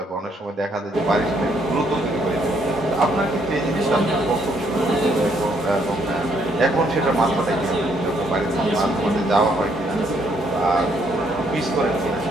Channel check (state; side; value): normal; both; correlation 0.70